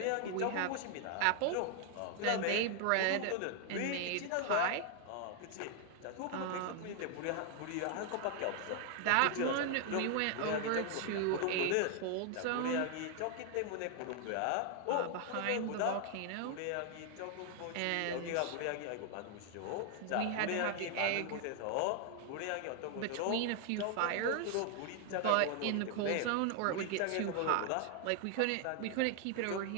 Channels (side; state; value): both; different; correlation 0.00